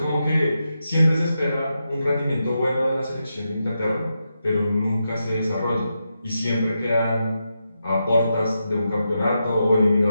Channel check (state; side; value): inverted; both; correlation -0.87